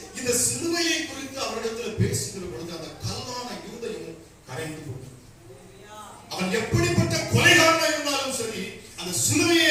இந்த சிலுவையை குறித்து அவரிடத்துல பேசுகிற பொழுது அந்த கல்லான யூதையும் கரைந்து போகும். அவன் எப்படிப்பட்ட கொலைகாரனா இருந்தாலும் சரி, அந்த சிலுவையை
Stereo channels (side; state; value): both; identical; correlation 1.00